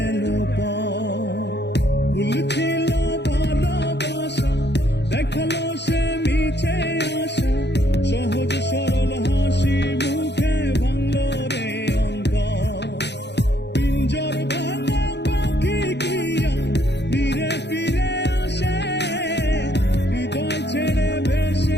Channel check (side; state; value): right; late; 0.50 ms